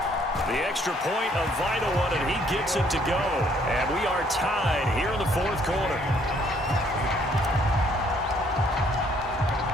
The extra point, a vital one, and he gets it to go. And we are tied here in the fourth quarter.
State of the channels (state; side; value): normal; both; correlation 0.64